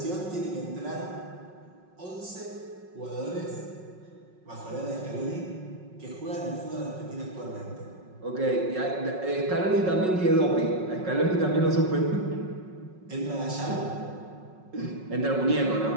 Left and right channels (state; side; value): late; left; 5.4 ms